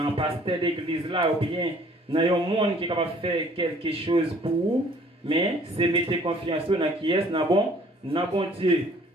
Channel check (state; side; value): normal; both; correlation 0.56